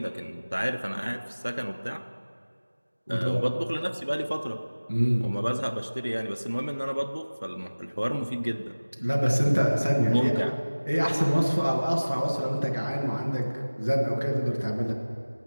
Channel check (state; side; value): inverted; both; correlation -1.00